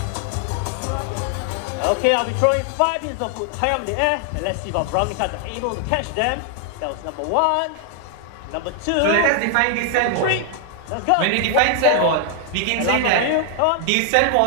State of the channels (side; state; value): both; different; correlation 0.00